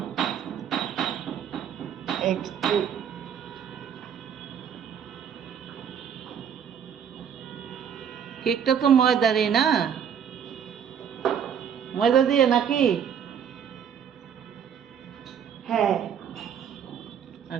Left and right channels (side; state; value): left; quieter; 8.1 dB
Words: একটু কেকটা তো ময়দারই না? ময়দা দিয়ে নাকি? হ্যাঁ,